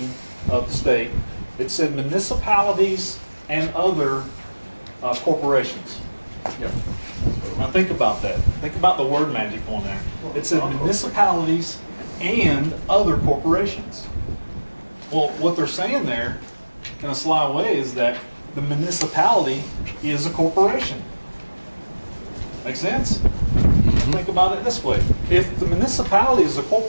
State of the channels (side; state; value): both; inverted; correlation -1.00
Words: of the state, it said municipalities and other corporations. Yeah. Now think about that. Think about the word magic on there. It said municipalities and other corporations. Well, what they're saying there, in a sly way, is that the municipality is a corporation. Make sense? Think about it this way. If the municipality is a